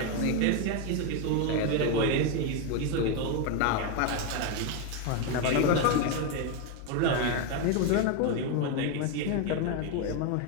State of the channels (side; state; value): both; different; correlation 0.02